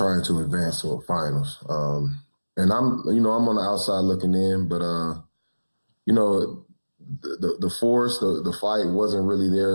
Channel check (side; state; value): both; inverted; correlation -1.00